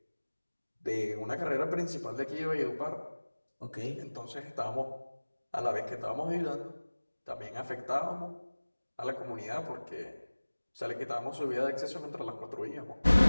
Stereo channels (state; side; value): inverted; both; correlation -1.00